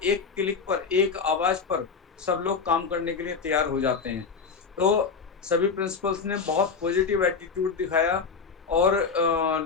एक क्लिक पर, एक आवाज़ पर सब लोग काम करने के लिए तैयार हो जाते हैं। तो सभी प्रिंसिपल्स ने बहुत पॉजिटिव एटीट्यूड दिखाया और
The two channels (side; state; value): right; quieter; 5.3 dB